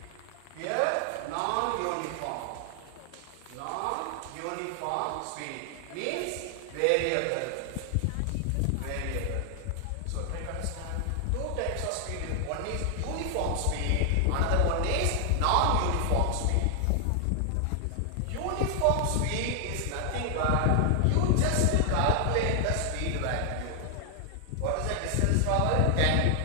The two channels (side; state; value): both; different; correlation 0.00